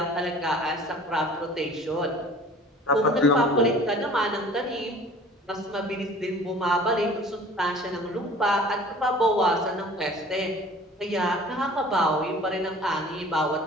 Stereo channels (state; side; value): normal; both; correlation 0.47